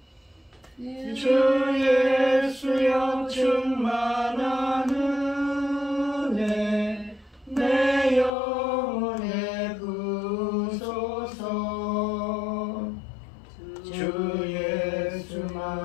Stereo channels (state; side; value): drops out; right; at 8.3 s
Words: 주 예수여 충만한 은혜 내 영혼에 부으소서. 주